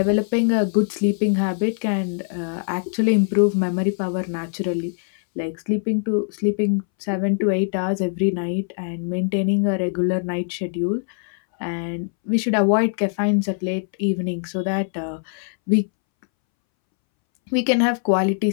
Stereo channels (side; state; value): right; silent; 63 dB below the other